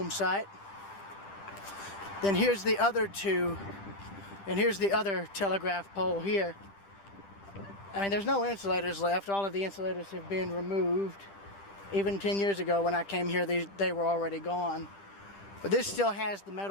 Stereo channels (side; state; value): right; late; 10 ms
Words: site. Then here's the other two, and here's the other telegraph pole here. I mean, there's no insulators left. All of the insulators have been removed. Even 10 years ago when I came here, they were already gone. But this still has the